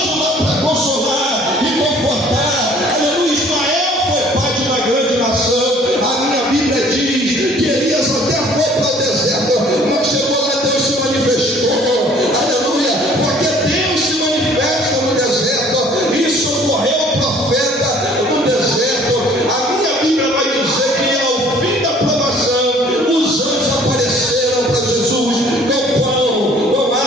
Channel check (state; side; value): normal; both; correlation 0.55